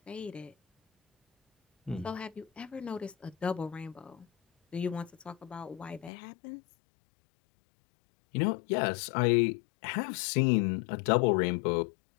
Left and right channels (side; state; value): right; drops out; at 6.1 s